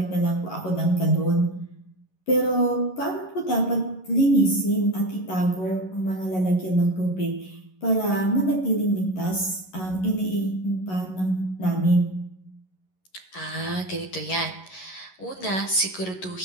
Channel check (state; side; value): late; right; 11 ms